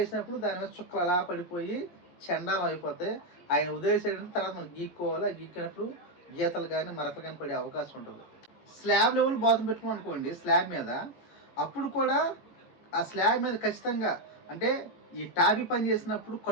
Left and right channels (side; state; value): right; late; 17 ms